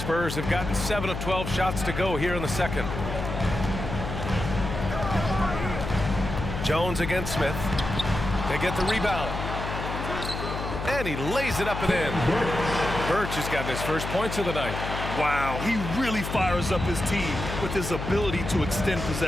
have gotten 7 of 12 shots to go here in the second. Jones against Smith. They get the rebound. And he lays it up and in. Birch has gotten his first points of the night. Wow, he really fires up his team with his ability to extend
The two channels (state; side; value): noise; left; hum, 5 dB below the sound